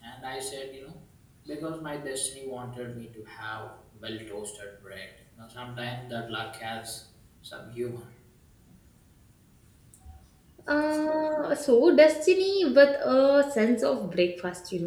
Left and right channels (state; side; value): identical; both; correlation 1.00